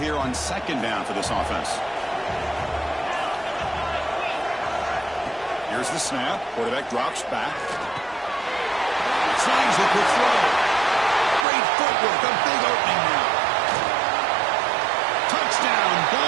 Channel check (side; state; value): left; drops out; at 11.5 s